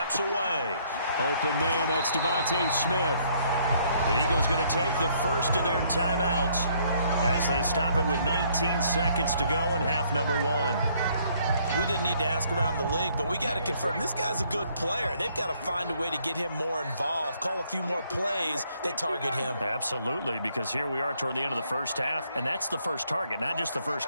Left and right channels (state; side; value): inverted; both; correlation -0.66